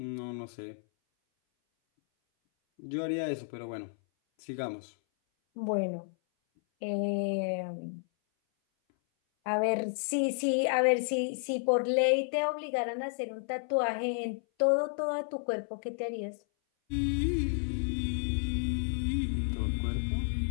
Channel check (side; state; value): right; silent; 57 dB below the other